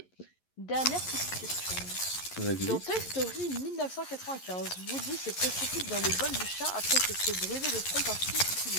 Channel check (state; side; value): late; right; 11 ms